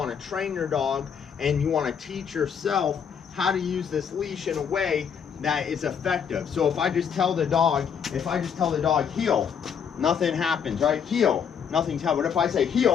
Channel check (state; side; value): quieter; right; 7.4 dB